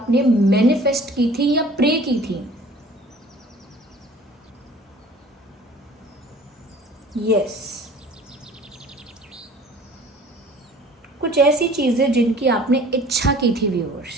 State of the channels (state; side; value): normal; both; correlation 0.49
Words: मैनिफेस्ट की थी या प्रे की थी, यस, कुछ ऐसी चीजें जिनकी आपने इच्छा की थी